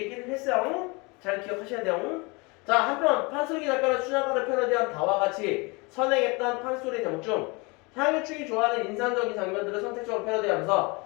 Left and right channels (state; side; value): quieter; right; 27.7 dB